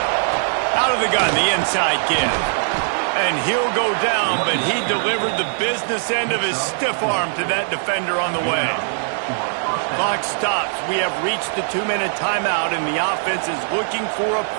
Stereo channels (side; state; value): left; silent; digital silence